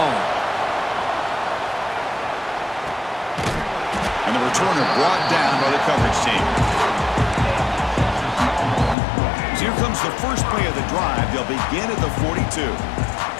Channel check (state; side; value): drops out; right; at 9.0 s